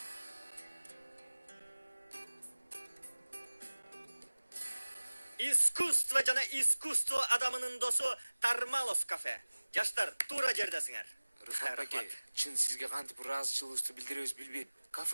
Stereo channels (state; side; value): inverted; both; correlation -1.00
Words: Искусство жана искусство адамынын досу Тармалов кафе. Жаштар, туура жердесиңер. Рыфат аке, чын сизге кантип ыраазычылыгыбызды билдиребиз билбейм.